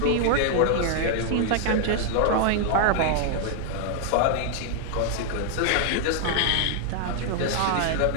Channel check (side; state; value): both; different; correlation 0.00